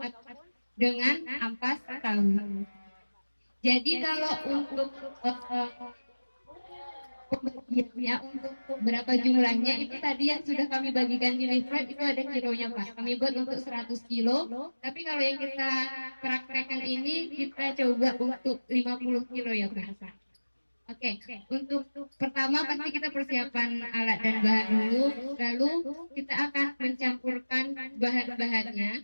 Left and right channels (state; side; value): inverted; both; correlation -1.00